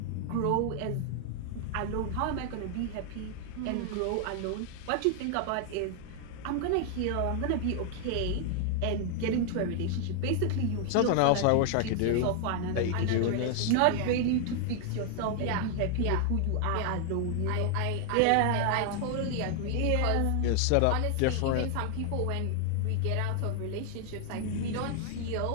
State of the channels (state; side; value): different; both; correlation 0.00